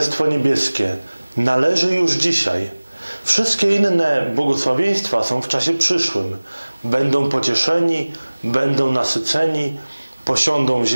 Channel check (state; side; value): inverted; both; correlation -1.00